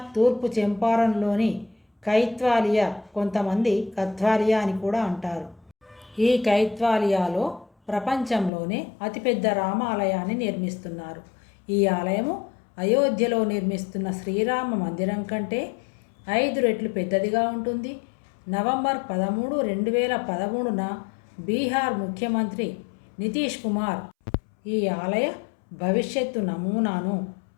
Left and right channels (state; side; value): drops out; right; at 8.5 s